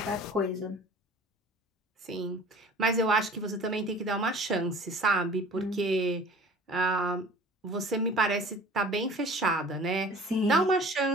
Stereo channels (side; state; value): both; normal; correlation 0.45